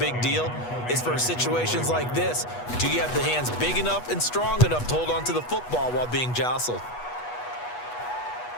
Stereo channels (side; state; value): right; late; 8.2 ms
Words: deal? It's for situations like this. Do you have the hands big enough and strong enough to hold on to the football while being jostled?